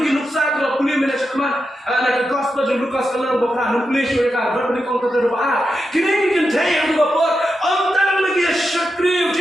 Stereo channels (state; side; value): normal; both; correlation 0.88